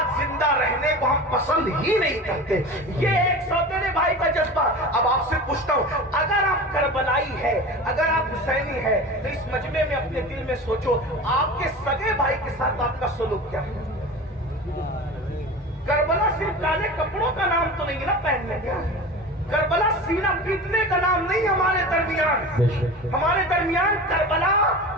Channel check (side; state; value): both; normal; correlation 0.33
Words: زندہ رہنے کو ہم پسند ہی نہیں کرتے. یہ ایک سوتیلے بھائی کا جذبہ. اب آپ سے پوچھتا ہوں اگر آپ کربلائی ہے, اگر آپ حسینی ہے تو اس مجمع میں اپنے دل میں سوچو آپ کے سگے بھائی کے ساتھ آپ کا سلوک کیا ہے. کربلا صرف کالے کپڑوں کا نام تو نہیں نا پہننے کا, کربلا سینہ پیٹنے کا نام نہیں. ہمارے درمیان کربلا